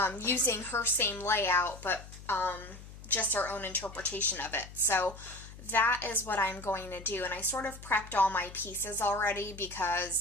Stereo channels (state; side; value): noise; left; hum, 16 dB below the sound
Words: using her same layout, but just our own interpretation of it. So that is what I'm going to do, and I sort of prepped all my pieces already